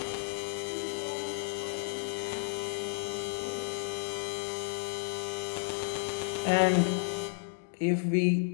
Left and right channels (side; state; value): right; silent; digital silence